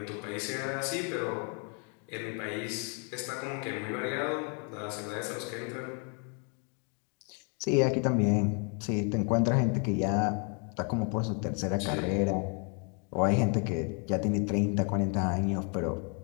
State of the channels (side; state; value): right; quieter; 38.1 dB